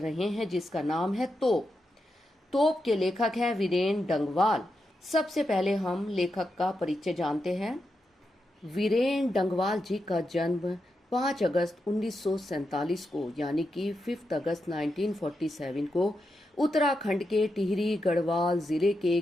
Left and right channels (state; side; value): normal; both; correlation 0.86